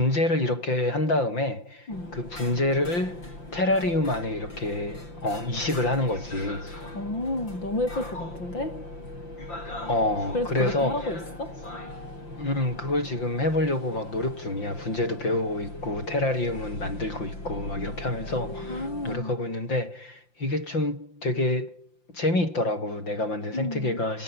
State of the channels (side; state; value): right; late; 5.8 ms